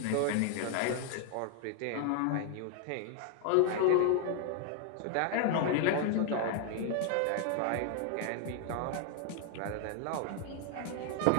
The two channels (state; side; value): different; both; correlation 0.00